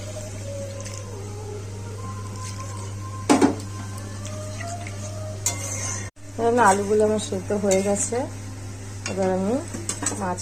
আলুগুলো আমার সেদ্ধ হয়ে গেছে, এবার আমি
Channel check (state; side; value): identical; both; correlation 1.00